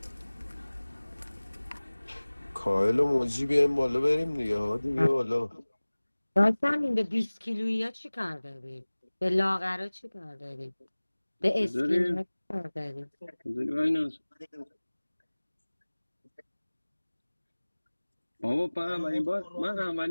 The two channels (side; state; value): both; inverted; correlation -1.00